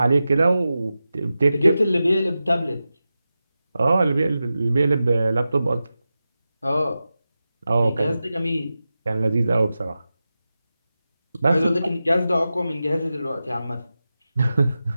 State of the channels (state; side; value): inverted; both; correlation -0.93